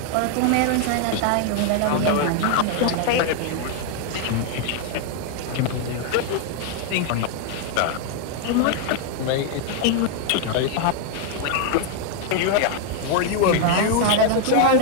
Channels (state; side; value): different; both; correlation 0.00